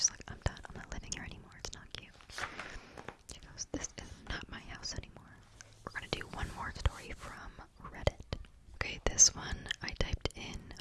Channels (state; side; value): identical; both; correlation 1.00